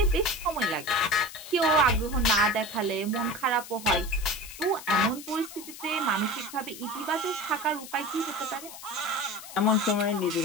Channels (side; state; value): left; noise; hiss, 14 dB below the sound